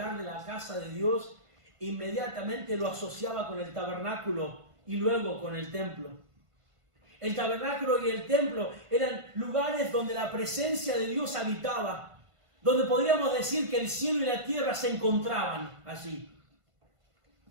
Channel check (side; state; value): left; late; 1.5 ms